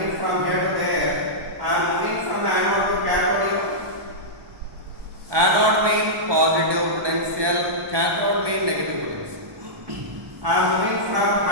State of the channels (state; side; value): late; left; 1.2 ms